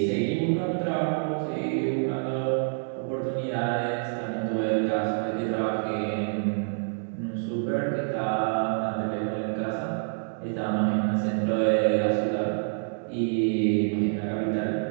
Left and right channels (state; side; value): silent; left; digital silence